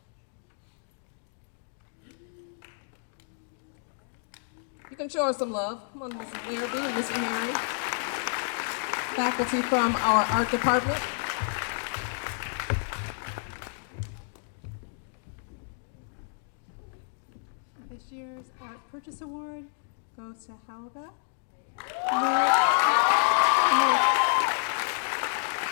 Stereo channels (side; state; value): right; silent; digital silence